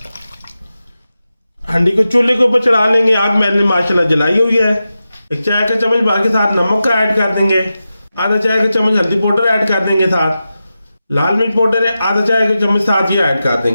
हंडी को चूल्हे के ऊपर चढ़ा लेंगे, आग मैंने माशाल्लाह जलाई हुई है। 1 चाय का चम्मच बाकी साथ नमक का ऐड कर देंगे। आधा चाय का चम्मच हल्दी पाउडर ऐड कर देंगे। साथ लाल मिर्च पाउडर है आधा चाय का चम्मच साथ ये ऐड कर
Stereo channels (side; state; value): both; inverted; correlation -0.92